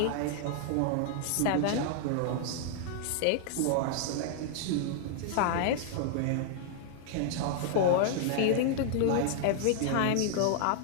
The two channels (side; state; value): both; different; correlation -0.01